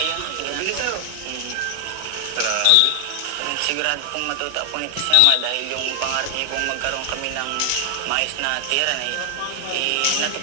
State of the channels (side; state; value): both; different; correlation 0.00